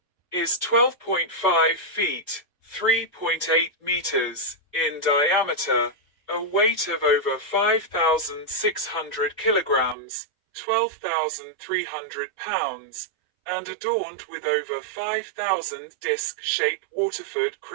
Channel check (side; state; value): left; drops out; at 10.0 s